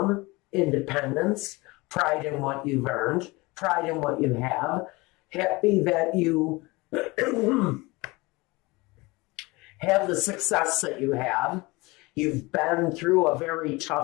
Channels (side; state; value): right; quieter; 23.5 dB